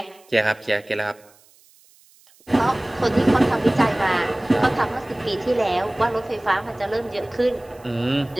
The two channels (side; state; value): right; noise; hiss, 29 dB below the sound